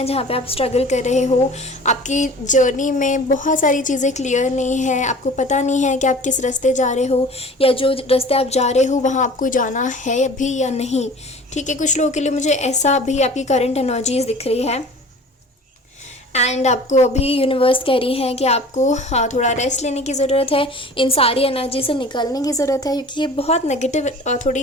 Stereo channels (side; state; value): both; normal; correlation 0.43